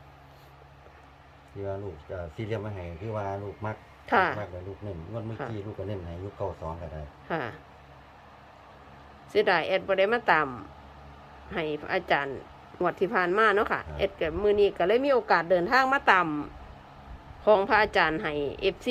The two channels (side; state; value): both; identical; correlation 1.00